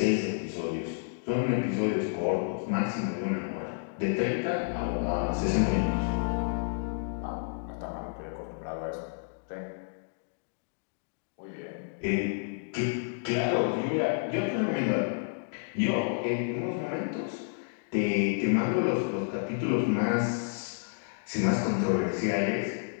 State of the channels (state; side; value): silent; right; digital silence